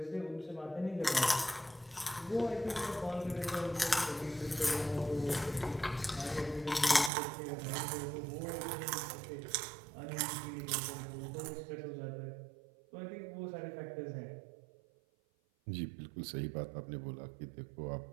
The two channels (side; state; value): left; drops out; at 7.1 s